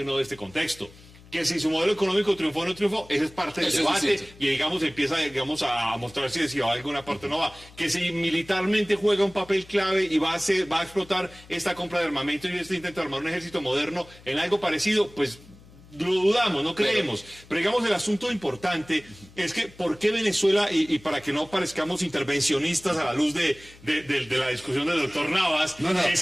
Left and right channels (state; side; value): noise; left; hum, 23 dB below the sound